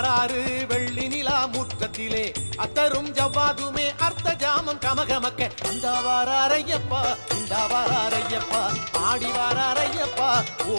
வெள்ளி நிலா முற்றத்திலே அத்தரும் ஜவ்வாதுமே அர்த்த ஜாமம் கமகமக்க இந்த வாராரையப்பா இந்த வாராரையப்பா ஆடி வாராரையப்பா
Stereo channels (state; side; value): inverted; both; correlation -1.00